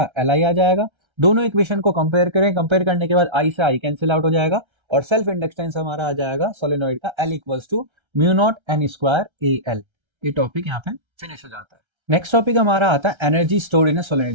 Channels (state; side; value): late; left; 1.3 ms